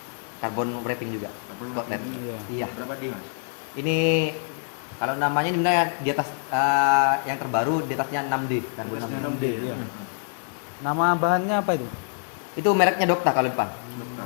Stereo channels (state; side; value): silent; right; 61 dB below the other